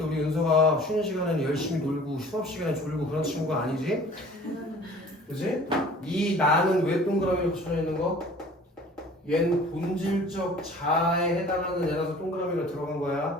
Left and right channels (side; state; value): both; normal; correlation 0.48